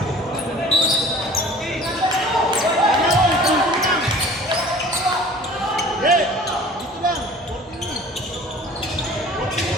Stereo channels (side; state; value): both; normal; correlation 0.46